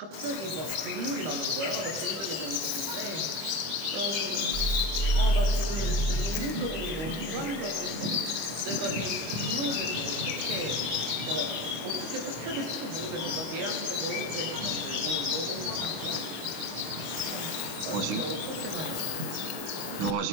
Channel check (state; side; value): late; left; 25 ms